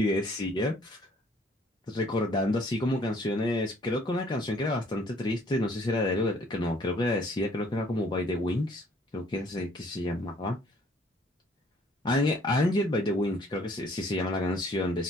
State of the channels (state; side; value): normal; both; correlation 0.60